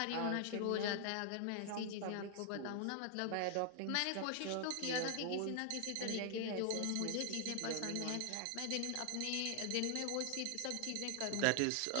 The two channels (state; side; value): different; both; correlation 0.00